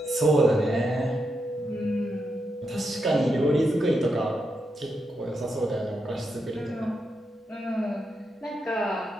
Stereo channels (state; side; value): normal; both; correlation 0.84